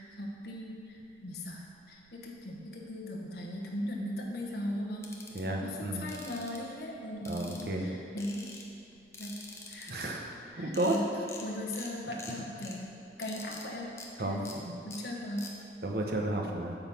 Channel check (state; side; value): noise; right; rumble, 28 dB below the sound